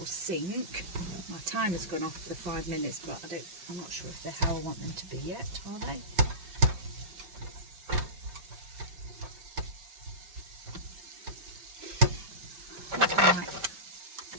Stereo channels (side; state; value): left; late; 5.2 ms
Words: sink. My timer's gone off for the 5 minutes, but I'm not sure if they're how I want them to be yet, are they?